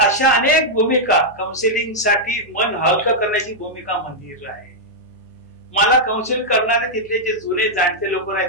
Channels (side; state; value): left; noise; hum, 28 dB below the sound